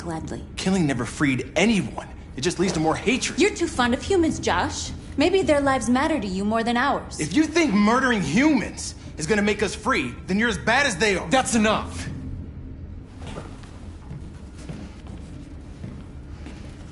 Killing never freed anyone. It just leads to more hatred. You're too fond of humans, Josh. Maybe their lives matter to you more than ours. If you think murdering humans is gonna make us free, then you're as bad as they are. That's enough!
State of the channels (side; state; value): both; identical; correlation 1.00